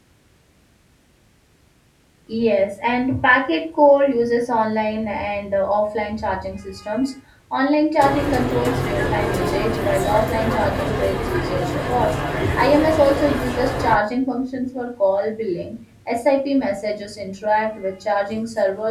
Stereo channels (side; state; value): both; identical; correlation 1.00